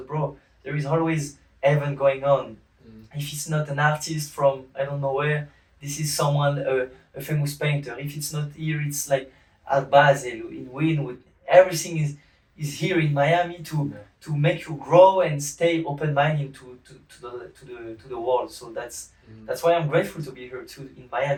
bro, there is always event going on. If it's not an artist from I don't know where, this is someone a famous painter. If it's not here, it's like at Basel, in Wynwood. Everything is here in Miami to make you grow and stay open-minded to the world. So that's why I'm grateful to be here too in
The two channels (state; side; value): identical; both; correlation 1.00